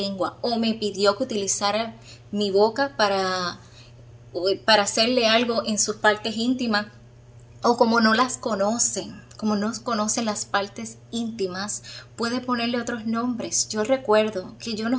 o me pidió que utilizara mi boca para hacerle algo en sus partes íntimas, o como no las conocen, como no conocen las partes íntimas, puede ponerle otros nombres. Yo recuerdo que yo no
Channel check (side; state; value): both; identical; correlation 1.00